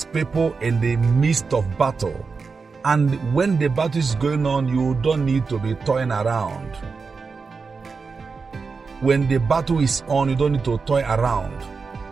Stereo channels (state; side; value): quieter; left; 4.8 dB